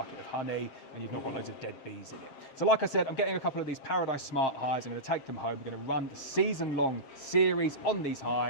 of honey, and you've not got loads of dead bees in it. So like I said, I'm getting a couple of these Paradise Smart hives. I'm going to take them home. We're going to run the season-long series on these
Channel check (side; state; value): right; late; 7.5 ms